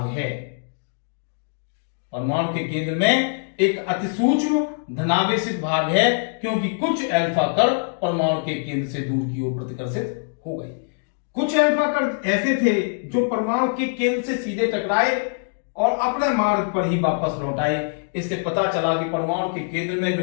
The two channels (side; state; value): right; silent; digital silence